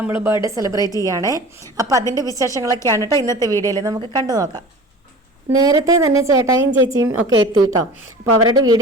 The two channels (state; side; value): normal; both; correlation 0.39